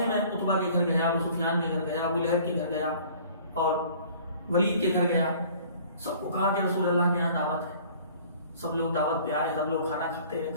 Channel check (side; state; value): both; inverted; correlation -0.51